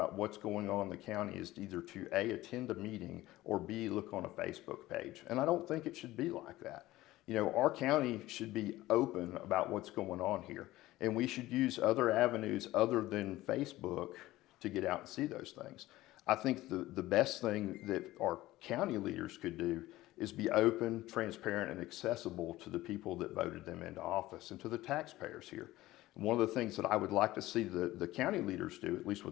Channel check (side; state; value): right; quieter; 16.9 dB